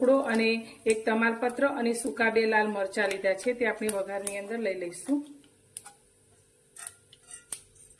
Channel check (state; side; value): identical; both; correlation 1.00